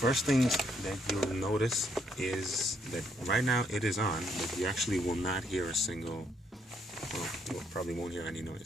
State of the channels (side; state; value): both; normal; correlation 0.72